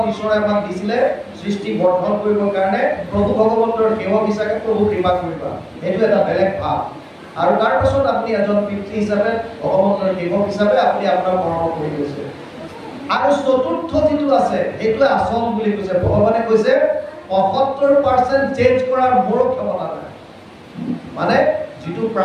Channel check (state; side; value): identical; both; correlation 1.00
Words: ঈশ্বৰে আমাক দিছিলে সৃষ্টি বৰ্ধন কৰিবৰ কাৰণে প্ৰভু ভগৱন্তৰ সেৱক হিচাপে প্ৰভু কৃপা কৰিবা, এইটো এটা বেলেগ ভাৱ। আৰু তাৰ পাছত আপুনি এজন পিতৃ হিচাপে ভগৱন্তৰ সেৱক হিচাপে আপুনি আপোনাৰ কৰ্ম কৰি গৈছে। আৰু চতুৰ্থ যিটো আছে সেইটোৱে আচল বুলি কৈছে। ভগৱানে কৈছে ৭৫% চেঞ্জ কৰাৰ মোৰ ক্ষমতা নাই। মানে যিটো